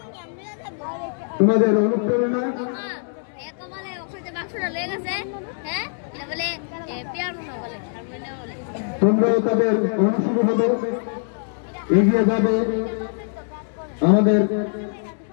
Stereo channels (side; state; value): right; silent; 63 dB below the other